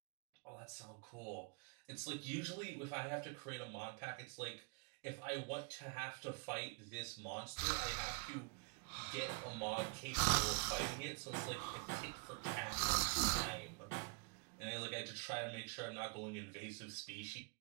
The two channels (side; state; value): left; quieter; 32.8 dB